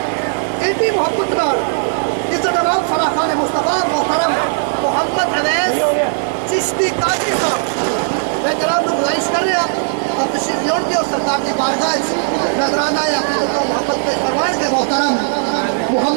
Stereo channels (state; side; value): silent; left; digital silence